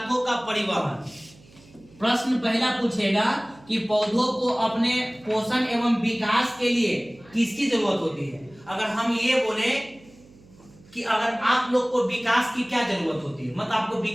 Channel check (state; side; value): noise; right; hum, 25 dB below the sound